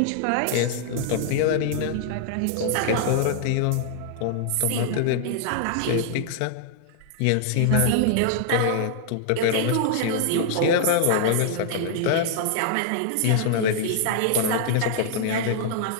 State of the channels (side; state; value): both; different; correlation -0.01